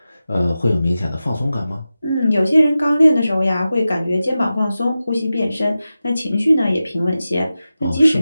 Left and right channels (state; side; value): inverted; both; correlation -0.93